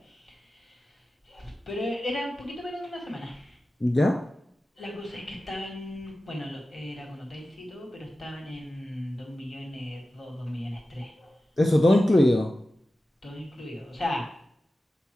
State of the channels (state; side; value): normal; both; correlation 0.94